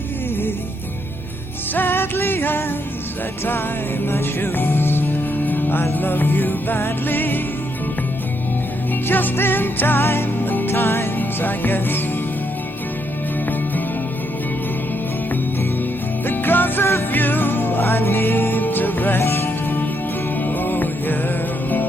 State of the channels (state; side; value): normal; both; correlation 0.77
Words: I tie my shoes. I love you badly, just in time at times, I guess. Because of you, I need to rest. Oh yeah.